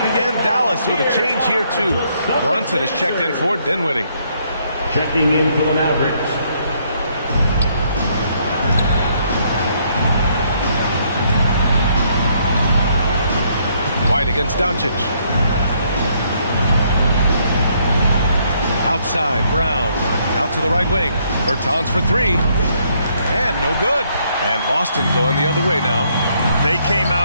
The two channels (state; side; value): inverted; both; correlation -0.70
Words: Dallas with a change here, too. Brunson is checked in for Dinwiddie. Checking in for the Mavericks. White against Doncic. Outside, Brown. Out to the right wing. Bertans for three. And no good. And Boston going the other way now. They came